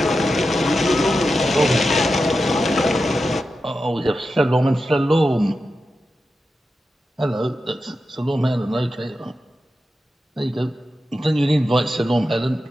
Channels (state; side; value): normal; both; correlation 0.91